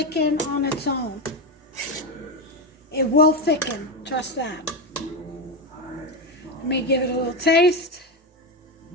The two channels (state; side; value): normal; both; correlation 0.12